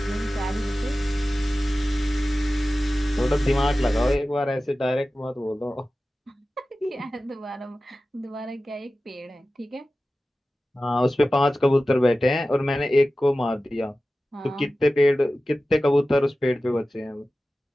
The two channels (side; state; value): both; normal; correlation 0.95